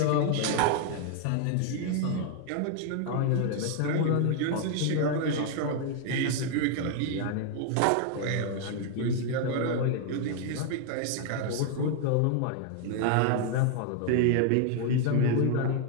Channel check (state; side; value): different; both; correlation 0.00